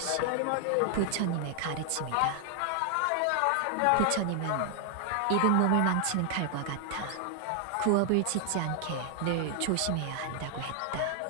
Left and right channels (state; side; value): different; both; correlation 0.00